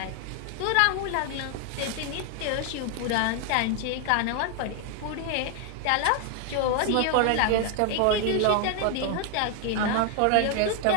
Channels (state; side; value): different; both; correlation 0.01